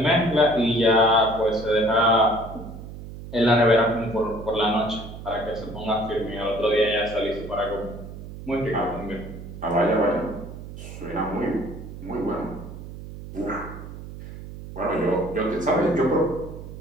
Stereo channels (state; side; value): noise; right; hum, 12 dB below the sound